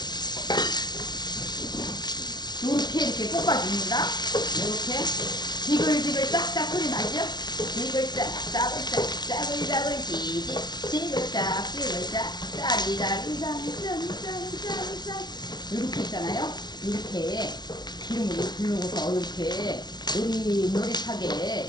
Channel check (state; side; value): late; right; 0.20 ms